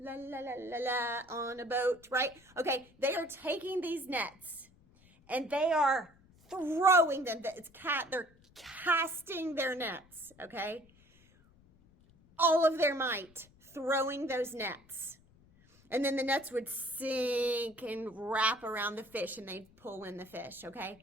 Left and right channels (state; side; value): noise; left; rumble, 28 dB below the sound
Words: la, la, la, la, on a boat, right? Okay, they are taking these nets and they are throwing them. They're casting their nets, okay? All of their might, throwing those nets. And then the nets would sink and wrap around the fish and they'd pull in the fish,